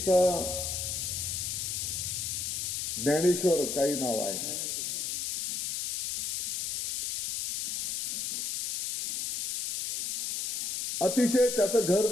ज्ञानेश्वर काही नाव आहे, अतिशय त्याचं घर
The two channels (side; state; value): left; noise; hiss, 2 dB below the sound